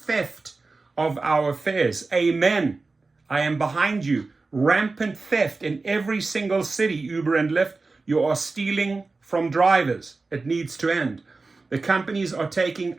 of our fares. Amen. I am behind you. Rampant theft in every single city, Uber and Lyft. You are stealing from drivers. It needs to end. The companies are taking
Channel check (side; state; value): left; quieter; 3.8 dB